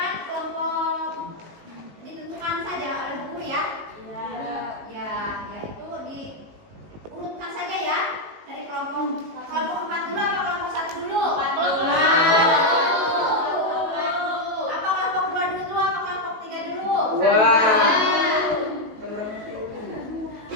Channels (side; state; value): left; late; 19 ms